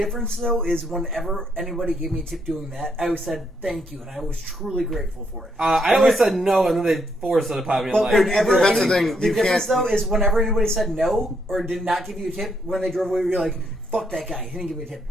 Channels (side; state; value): both; normal; correlation 0.75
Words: though is whenever anybody gave me a tip doing that, I always said thank you, and I was truly grateful for it. I always said no, and then they forced it upon me. But Like, whenever that's the any- thing, the you difference can't- though is whenever anybody said no or did not give you a tip when they drove away, you're like, "Fuck that guy! He didn't give me a tip."